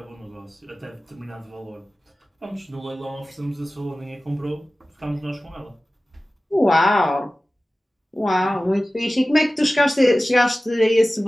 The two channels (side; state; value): both; normal; correlation 0.96